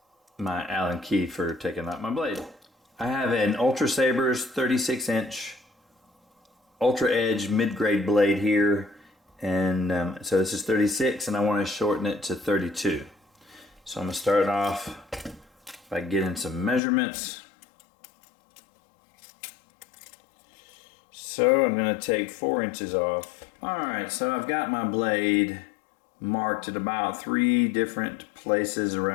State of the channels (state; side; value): drops out; right; at 16.8 s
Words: my Allen key for taking out my blade. I have an Ultra Saber's 36-inch Ultra Edge mid-grade blade here, and so this is 36 and I want to shorten it to 32. So I'm going to start off by getting some measurements. So I'm going to take 4 inches off. Alright, so I've got my blade marked at about 3 different places